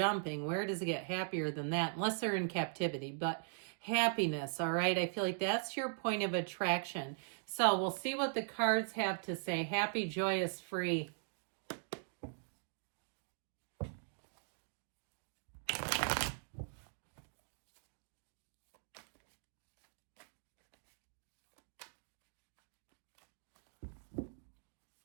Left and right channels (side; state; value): left; silent; digital silence